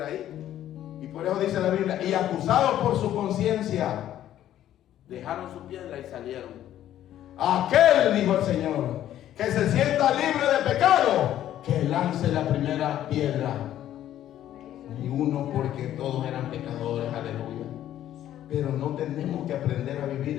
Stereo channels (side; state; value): right; quieter; 12.0 dB